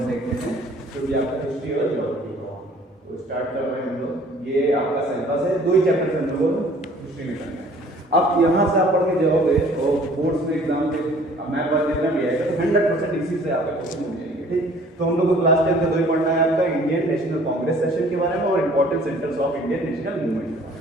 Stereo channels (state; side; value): normal; both; correlation 0.54